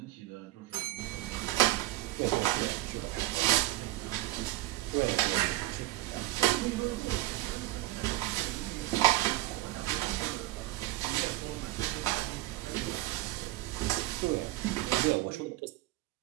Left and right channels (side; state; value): left; quieter; 17.7 dB